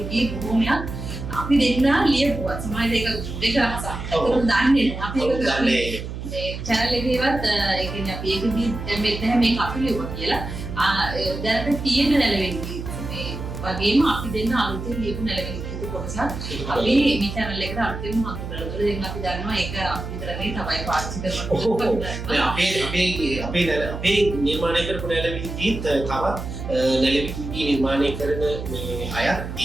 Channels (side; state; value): right; noise; hum, 7 dB below the sound